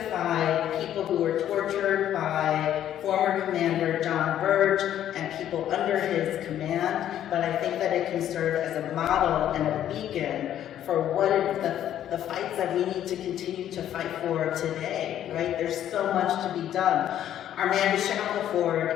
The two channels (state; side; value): quieter; right; 11.1 dB